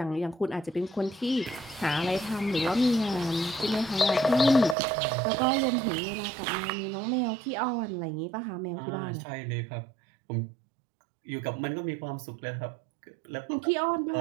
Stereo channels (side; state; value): left; drops out; at 4.8 s